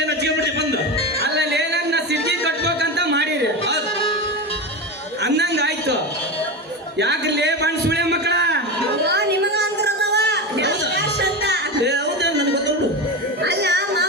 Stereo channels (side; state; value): both; normal; correlation 0.20